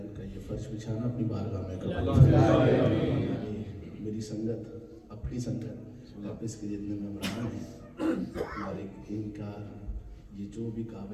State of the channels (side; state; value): both; identical; correlation 1.00